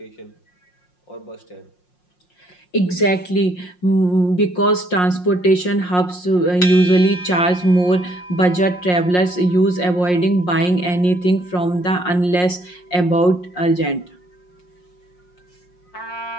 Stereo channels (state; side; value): late; right; 5.6 ms